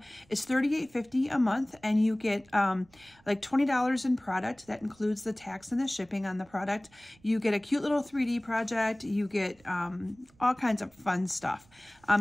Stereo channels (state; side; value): noise; right; rumble, 30 dB below the sound